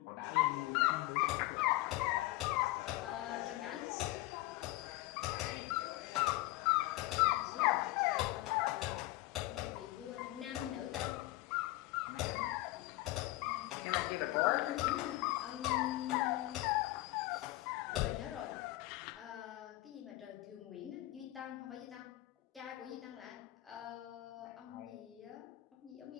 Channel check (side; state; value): right; quieter; 18.2 dB